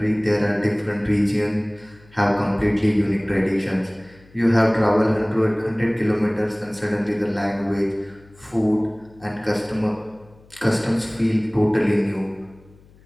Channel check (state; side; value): noise; left; hum, 27 dB below the sound